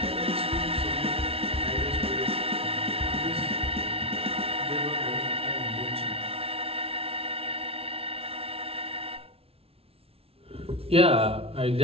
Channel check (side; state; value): left; late; 0.28 ms